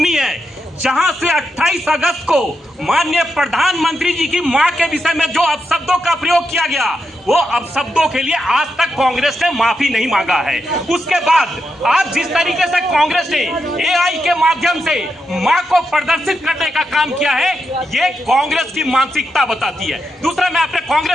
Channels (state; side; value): normal; both; correlation 0.85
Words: है, जहां से 28 अगस्त को माननीय प्रधानमंत्री जी की मां के विषय में जो अपशब्दों का प्रयोग किया गया, वो अपशब्दों के लिए आज तक कांग्रेस ने माफी नहीं मांगा है। उसके बाद आज जिस तरीके से कांग्रेस ने एआई के माध्यम से मां को प्रदर्शित करने का काम किया है, ये कांग्रेस की मानसिकता बताती है। दूसरा, मैं अपने